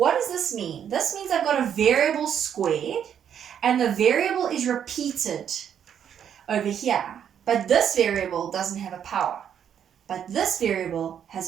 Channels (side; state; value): left; quieter; 8.8 dB